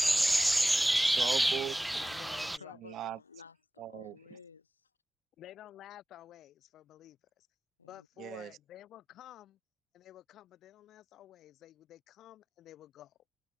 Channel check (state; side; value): normal; both; correlation 0.97